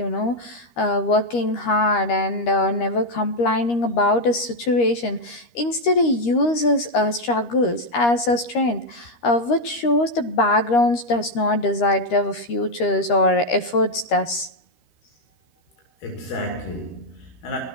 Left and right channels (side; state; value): right; late; 13 ms